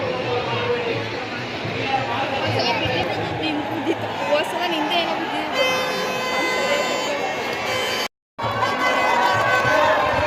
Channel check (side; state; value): both; identical; correlation 1.00